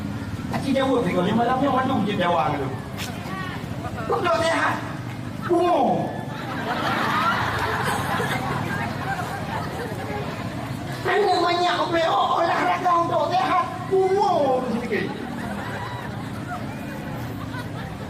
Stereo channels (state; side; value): identical; both; correlation 1.00